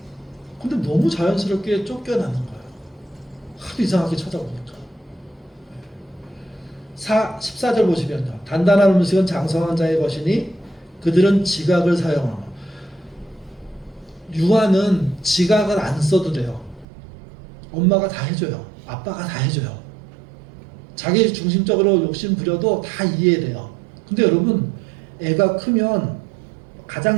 근데 너무 자연스럽게 쫓겨나는 거예요. 하도 이상하게 쳐다보니까. 14절 보시면요. 단단한 음식은 장성한 자의 것이니 그들은 지각을 사용하며. 유아는 지각을 안 써도 돼요. 엄마가 다 해줘요. 아빠가 다 해줘요. 자기 중심적으로 욕심 부려도 다 이해돼요. 근데 여러분, 애가 크면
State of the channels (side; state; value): left; drops out; at 16.9 s